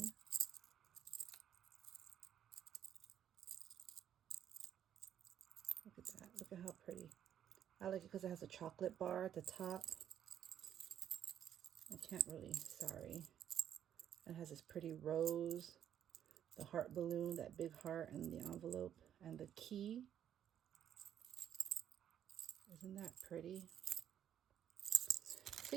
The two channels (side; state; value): left; quieter; 9.9 dB